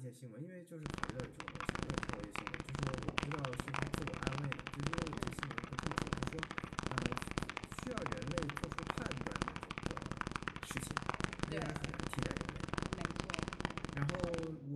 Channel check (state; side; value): identical; both; correlation 1.00